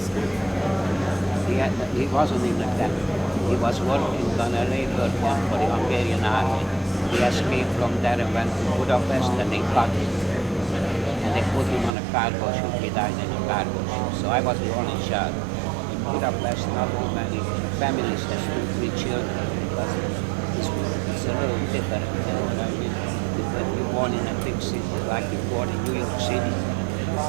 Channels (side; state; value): left; drops out; at 11.9 s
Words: He wasn't in the camp. He was working on a labor camp for the Hungarian army. He escaped from there and went to Budapest, and they caught him. And they put him on a cargo ship. He died in a cargo ship. So I was the only child. In Budapest, not too many families have 2-3 children. Because it's a little different, you know what I mean? When you're born in a big city, like you're born in New York City,